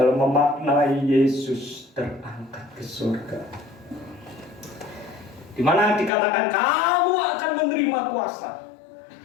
memaknai Yesus terangkat ke surga, di mana dikatakan kamu akan menerima kuasa,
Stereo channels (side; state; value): right; drops out; at 6.1 s